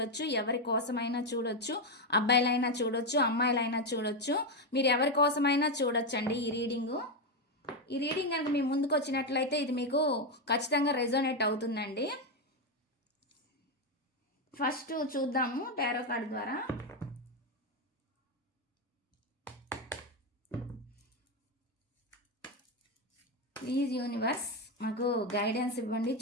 ఎవరి కోసమైనా చూడొచ్చు. అబ్బాయిలైనా చూడొచ్చు, అమ్మాయిలైనా చూడొచ్చు. మీరు ఎవరి కోసమైనా చూడొచ్చండి ఈ రీడింగు. ఈ రీడింగ్ కనుక మీ ముందుకు వచ్చినట్లయితే ఇది మీకు ఖచ్చితంగా రెజోనేట్ అవుతుందండి. ఫస్ట్ చూద్దాము టారో కార్డ్ ద్వారా. ప్లీజ్ యూనివర్స్ మాకు గైడెన్స్ ఇవ్వండి.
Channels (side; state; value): both; normal; correlation 0.07